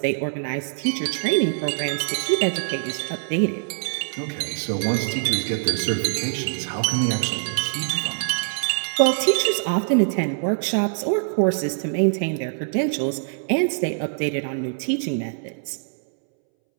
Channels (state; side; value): silent; left; 63 dB below the other